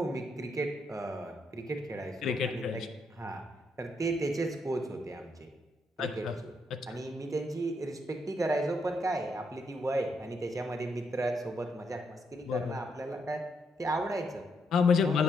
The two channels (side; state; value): both; normal; correlation 0.77